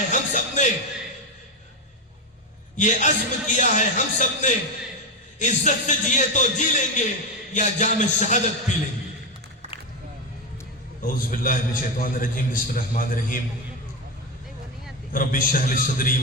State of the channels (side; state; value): both; normal; correlation 0.11